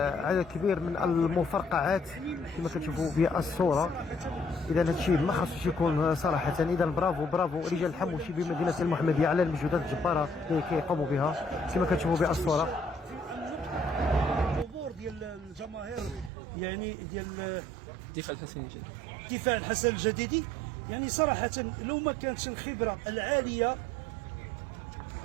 عدد كبير من المفرقعات كما كتشوفوا بالصوره. اذا هذا الشيء ما خاصوش يكون صراحه. اذا برافو برافو رجال الحموشي بمدينه المحمديه على المجهودات الجباره اللي كيقوموا بها كما كتشوفوا بالصوره. الحضور ديال الجماهير يعني ديال الدفاع الحسن الجديدي يعني صراحة لو ما كانتش الخبرة العالية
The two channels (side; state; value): left; drops out; at 16.3 s